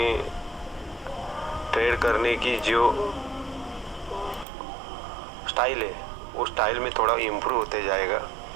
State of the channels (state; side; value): drops out; left; at 4.5 s